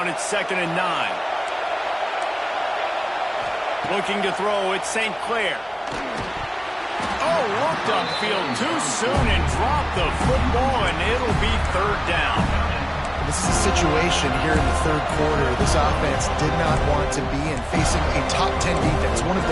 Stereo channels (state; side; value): identical; both; correlation 1.00